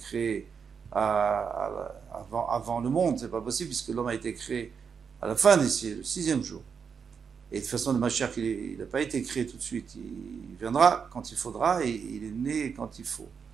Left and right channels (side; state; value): left; quieter; 6.4 dB